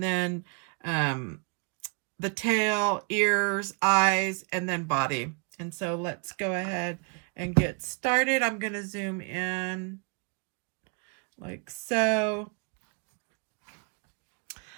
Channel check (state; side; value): quieter; left; 36.7 dB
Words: then the tail, ears, eyes, and then body. And so let's go ahead and get started. I'm going to zoom in like so.